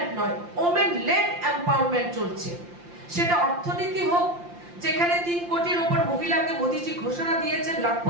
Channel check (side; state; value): left; late; 5.8 ms